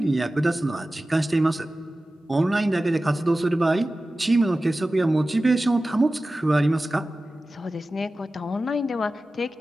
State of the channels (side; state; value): both; normal; correlation 0.95